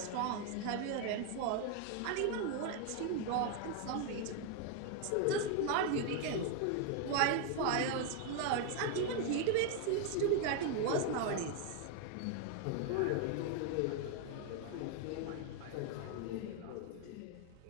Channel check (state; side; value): different; both; correlation 0.01